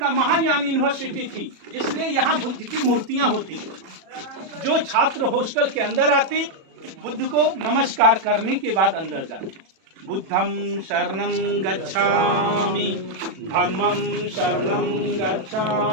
महायान यूनिवर्सिटी थी, इसलिए यहाँ बुद्ध की मूर्तियां होती। जो छात्र हॉस्टल के अंदर आते बुद्ध को नमस्कार करने के बाद अंदर जाते। बुद्धं शरणं गच्छामि, धम्मं शरणं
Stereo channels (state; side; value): late; left; 37 ms